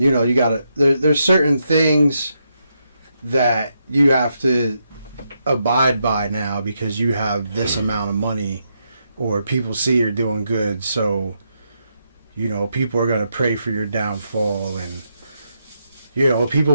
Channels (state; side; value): inverted; both; correlation -0.81